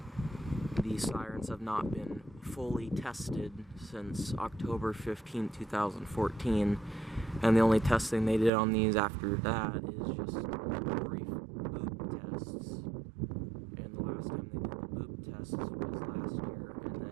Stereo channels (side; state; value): left; drops out; at 8.5 s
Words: the sirens have not been fully tested since October 15, 2014. And the only testing they did on these after that is just brief boop tests. And the last time they did the boop tests was last year. And